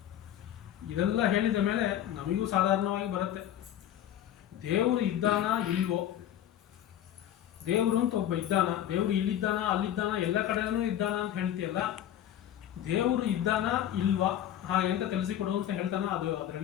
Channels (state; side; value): quieter; right; 11.2 dB